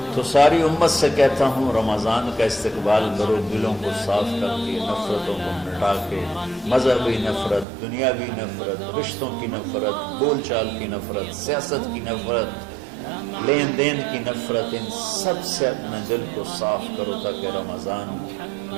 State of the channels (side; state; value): left; drops out; at 7.7 s